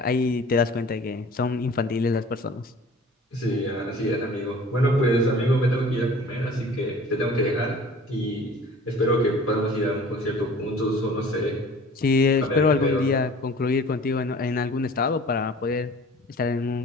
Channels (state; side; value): normal; both; correlation 0.46